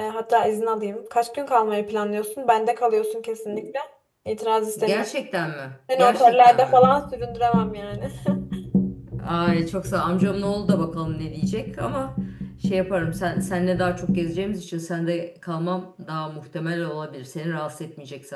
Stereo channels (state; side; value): identical; both; correlation 1.00